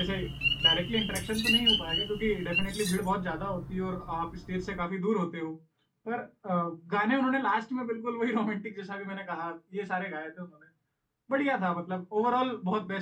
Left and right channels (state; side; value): identical; both; correlation 1.00